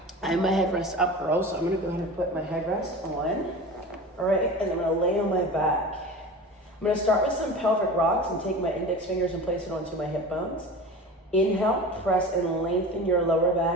I have my headrest up girl, so I'm gonna go ahead and put my headrest on, all right? And I'm gonna lay on my back. I'm gonna start with some pelvic rocks and take my index fingers and place it onto my hip bones. Inhale, press and lengthen your lower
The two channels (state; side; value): normal; both; correlation 0.34